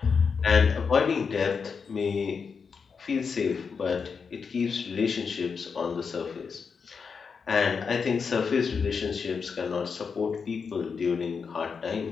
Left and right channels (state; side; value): quieter; right; 5.7 dB